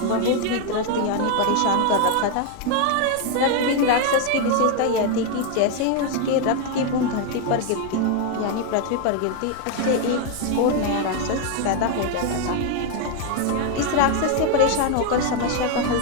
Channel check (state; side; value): different; both; correlation 0.01